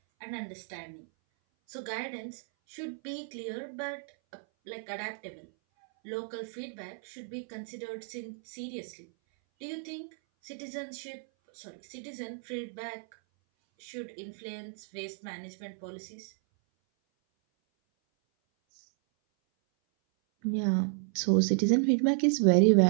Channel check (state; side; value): silent; left; 56 dB below the other